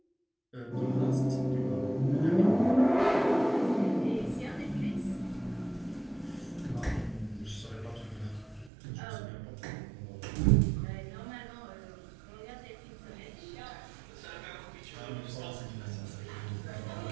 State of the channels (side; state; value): left; drops out; at 8.7 s